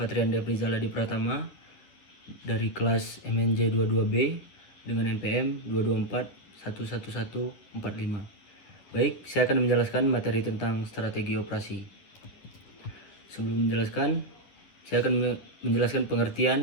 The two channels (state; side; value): late; right; 11 ms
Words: Devrizal Adi Pratama dari kelas MNJ 22B dengan NPM 224111145. Baik, saya akan menjelaskan materi tentang strategi operasi. Sebelum menjelaskan, saya akan menjelaskan